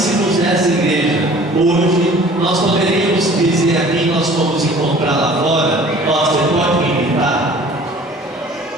dessa igreja hoje, nós poderíamos dizer aqui, nós fomos encontrar lá fora: ó, você pode me imitar?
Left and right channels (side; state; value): both; normal; correlation 0.49